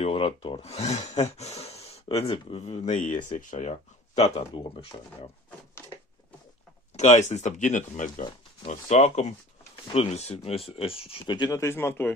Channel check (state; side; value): normal; both; correlation 0.44